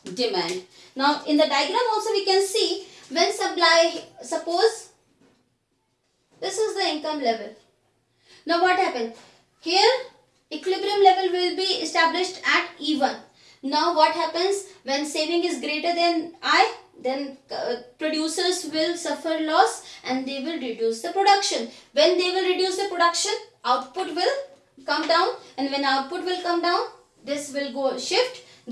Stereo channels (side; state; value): both; identical; correlation 1.00